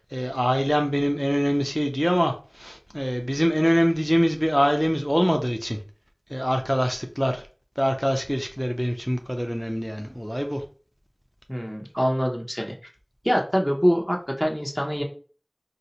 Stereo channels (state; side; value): identical; both; correlation 1.00